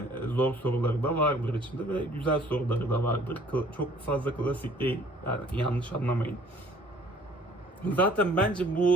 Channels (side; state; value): both; normal; correlation 0.55